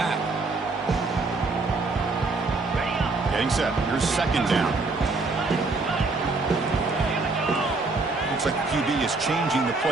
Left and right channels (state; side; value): quieter; left; 3.7 dB